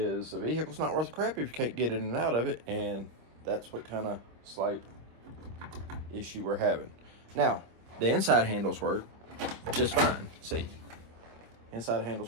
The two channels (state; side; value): late; left; 25 ms